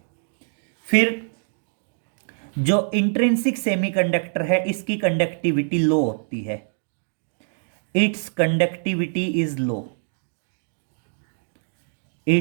फिर जो इंट्रिंसिक सेमीकंडक्टर है इसकी कंडक्टिविटी लो होती है, it's conductivity is low,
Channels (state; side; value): silent; left; digital silence